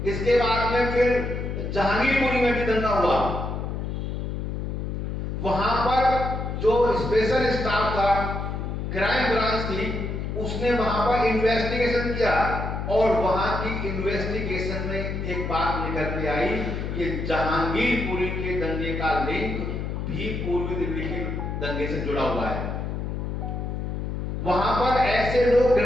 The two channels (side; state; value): left; noise; hum, 4 dB below the sound